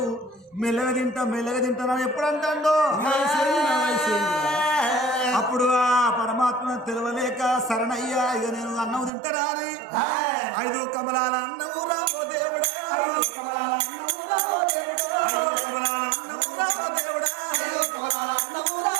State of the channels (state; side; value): drops out; left; at 9.1 s